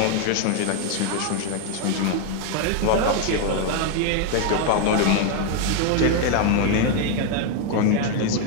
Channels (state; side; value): different; both; correlation 0.01